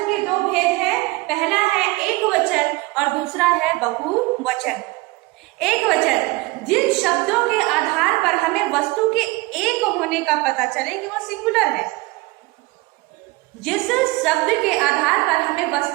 के दो भेद हैं, पहला है एक वचन और दूसरा है बहुवचन। एक वचन जिन शब्दों के आधार पर हमें वस्तु के एक होने का पता चले कि वो सिंगुलर है। जिस शब्द के आधार पर हमें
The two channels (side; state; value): left; quieter; 22.7 dB